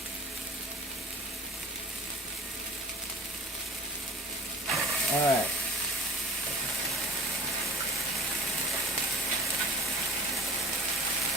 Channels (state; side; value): normal; both; correlation 0.45